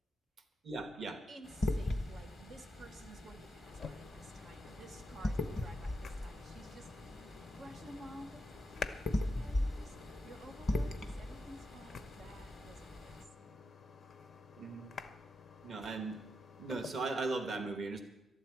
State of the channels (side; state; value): both; normal; correlation 0.86